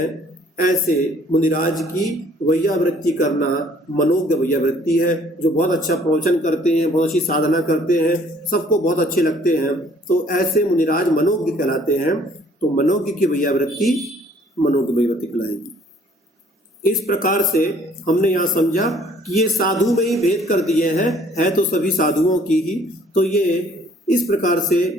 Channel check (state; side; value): normal; both; correlation 0.58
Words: ऐसे मुनिराज की वैयावृत्ति करना मनोज्ञ वैयावृत्ति है। जो बहुत अच्छा प्रवचन करते हैं, बहुत अच्छी साधना करते हैं, सबको बहुत अच्छे लगते हैं, तो ऐसे मुनिराज मनोज्ञ कहलाते हैं। तो मनोज्ञ की वैयावृत्ति मनोज्ञ वैयावृत्ति कहलाएगी। इस प्रकार से हमने यहाँ समझा कि ये साधु में ही भेद कर दिए हैं, है तो सभी साधुओं की ही। तो ये इस प्रकार